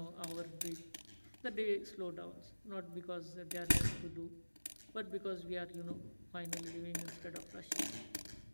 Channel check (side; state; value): both; inverted; correlation -1.00